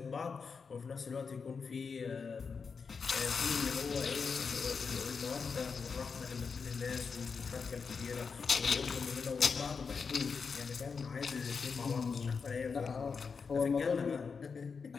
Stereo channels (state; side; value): quieter; right; 5.4 dB